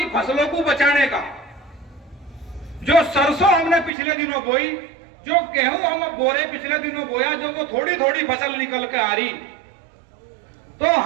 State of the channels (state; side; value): drops out; left; at 3.9 s